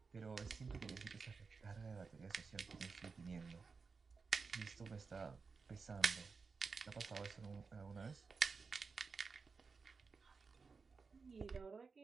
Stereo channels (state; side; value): quieter; left; 4.8 dB